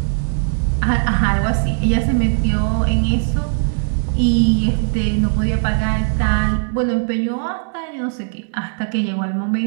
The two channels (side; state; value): left; silent; digital silence